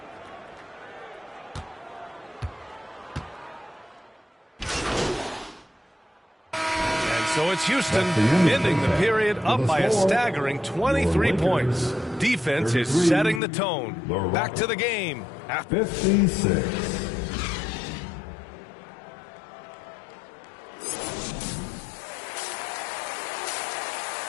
So it's Houston ending the period up by a staggering 23 points. Defense is setting the tone. Back to the game. 56.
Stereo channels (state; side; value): drops out; right; at 13.4 s